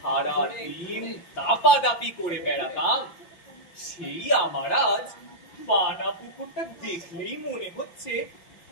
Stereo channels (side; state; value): right; late; 5.8 ms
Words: দিন দাপাদাপি করে বেড়াতাম, সেই আমার আজ পানা পুকুরটা দেখলেই মনে হচ্ছে